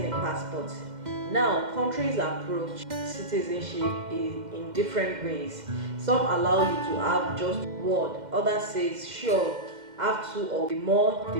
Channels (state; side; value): late; left; 2.1 ms